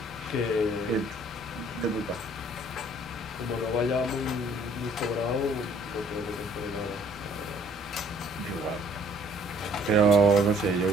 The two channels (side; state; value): both; normal; correlation 0.60